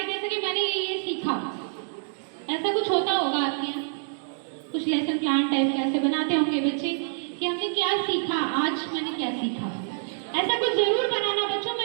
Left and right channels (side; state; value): left; silent; digital silence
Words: दे सके, मैंने ये सीखा, ऐसा कुछ होता होगा आपके यहाँ? कुछ लेसन प्लान टाइप का ऐसे बनाते होंगे बच्चे कि हमने क्या सीखा, आज मैंने क्या सीखा। ऐसा कुछ जरूर बनाना बच्चों,